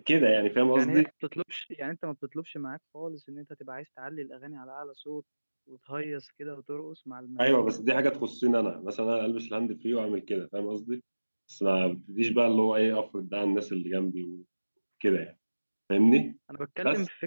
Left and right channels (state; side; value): inverted; both; correlation -1.00